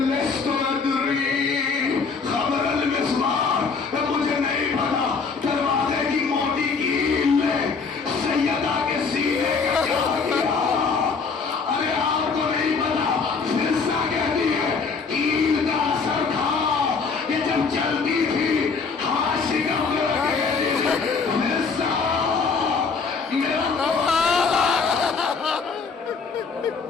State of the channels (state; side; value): quieter; right; 5.0 dB